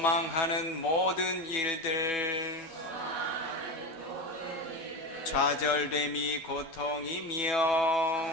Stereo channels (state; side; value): late; right; 12 ms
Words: 모든 일들 좌절됨이 고통이며